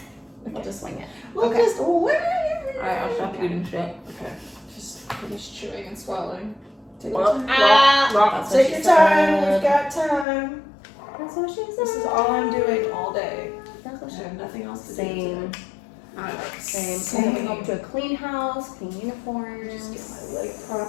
We'll just wing it. we'll Okay. just Alright, I'll stop eating shit. Okay, just finish chewing and swallowing. Take Well, your time. That's what Take she your said. time. We've got time. That's what she said. This is all I'm doing all day. That's what I she have nothing else to do Same. today. Same. I'm coming home to a clean house, clean uniforms. Just get my leg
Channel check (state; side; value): drops out; right; at 10.2 s